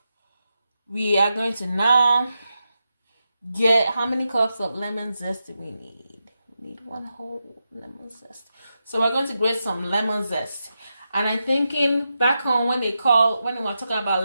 We are going to now get, how many cups of lemon zest do we need? We need 1 whole lemon zest. So we're going to grate some lemon zest. And I'm thinking back home when they were talking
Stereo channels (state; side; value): inverted; both; correlation -0.88